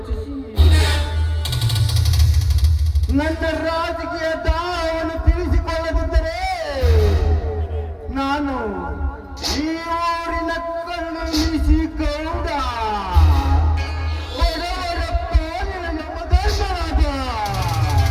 ನನ್ನ ರಾಜಕೀಯ ದಾಹವನ್ನು ತಿಳಿಸಿಕೊಳ್ಳದಿದ್ದರೆ ನಾನು ಈ ಊರಿನ ಕಣ್ಣು ಮೀಸಿ ಗೌಡ ಬಡವರ ಪಾಲಿನ ಎಂಬ ಧರ್ಮರಾಜ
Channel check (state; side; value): identical; both; correlation 1.00